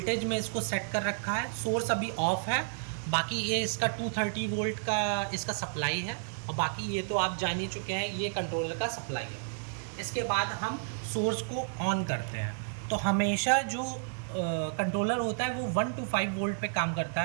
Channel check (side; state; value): left; silent; 57 dB below the other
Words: में इसको सेट कर रखा है। सोर्स अभी ऑफ है, बाकी ये इसका 230 वोल्ट का इसका सप्लाई है और बाकी ये तो आप जान ही चुके हैं, ये कंट्रोलर का सप्लाई है। इसके बाद हम सोर्स को ऑन करते हैं तो हमेशा जो कंट्रोलर होता है वो 1 to 5 वोल्ट पे काम करता